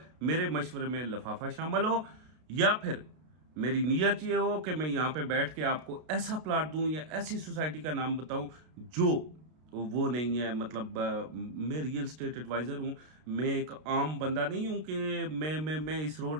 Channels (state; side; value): late; left; 32 ms